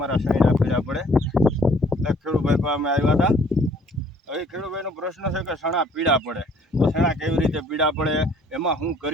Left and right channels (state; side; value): normal; both; correlation 0.59